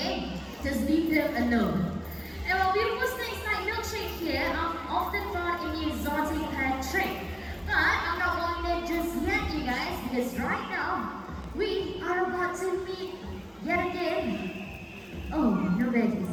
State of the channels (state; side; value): identical; both; correlation 1.00